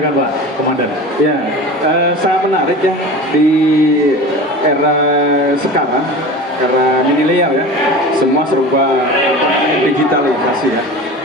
Pak Komandan. Ya, sangat menarik ya di era sekarang karena milenial ya, semua serba digitalisasi ya.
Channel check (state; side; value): normal; both; correlation 0.34